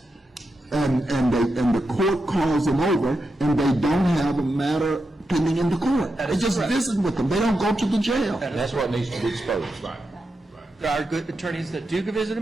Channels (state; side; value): normal; both; correlation 0.87